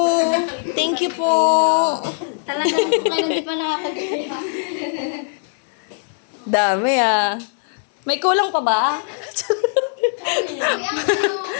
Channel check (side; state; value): right; silent; digital silence